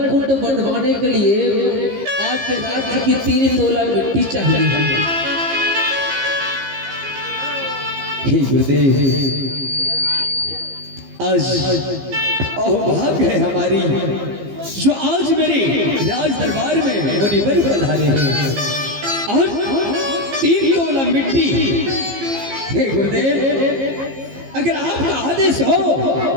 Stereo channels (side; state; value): left; late; 15 ms